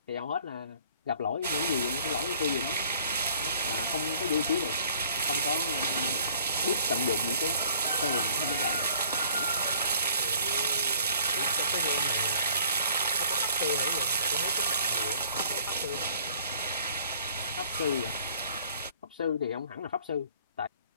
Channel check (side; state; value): both; inverted; correlation -0.55